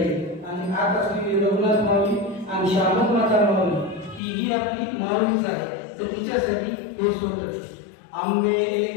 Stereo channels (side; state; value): right; drops out; at 4.2 s